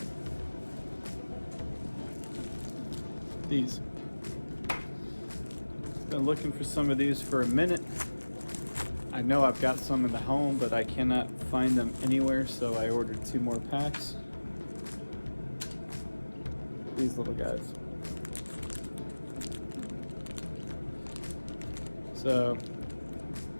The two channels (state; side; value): inverted; both; correlation -1.00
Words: these. Been looking for some of these for a minute. I know I've got some in the home, but I cannot find them anywhere, so I ordered 2 more packs. These little guys. So